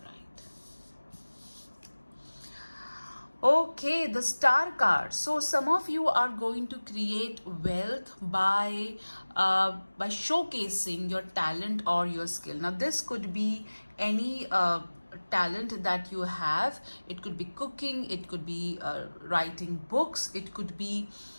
Okay, the star card. So some of you are going to create wealth by showcasing your talent or your skill. Now this could be any talent that you have. It could be cooking, it could be writing books, it could be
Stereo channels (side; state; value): both; inverted; correlation -1.00